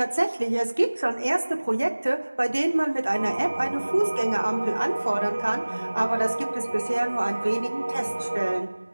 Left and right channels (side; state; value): both; inverted; correlation -1.00